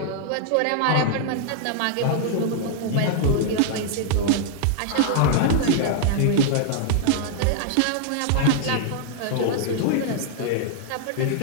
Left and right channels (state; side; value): different; both; correlation -0.01